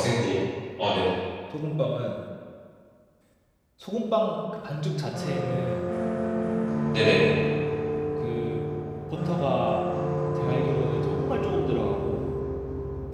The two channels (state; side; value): identical; both; correlation 1.00